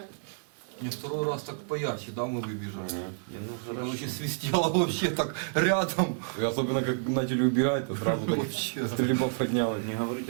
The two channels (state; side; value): silent; left; 58 dB below the other